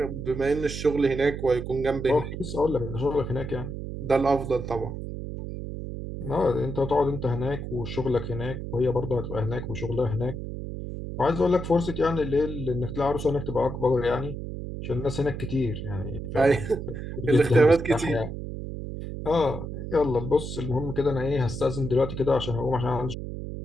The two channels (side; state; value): right; noise; hum, 7 dB below the sound